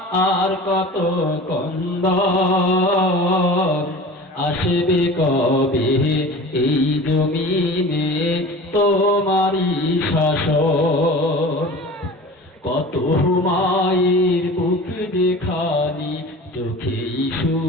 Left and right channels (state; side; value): normal; both; correlation 0.38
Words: আর কত কন্দন, আসবে কবে এই জমিনে তোমারই শাসন। কত মায়ের বুক দেখানি চোখেই